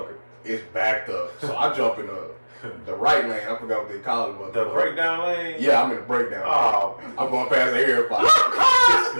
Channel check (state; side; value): inverted; both; correlation -1.00